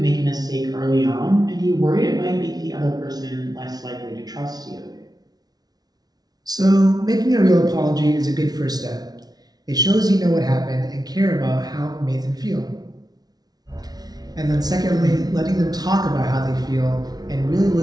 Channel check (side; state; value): left; late; 0.19 ms